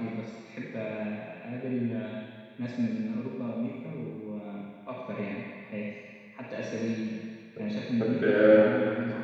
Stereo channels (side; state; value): both; identical; correlation 1.00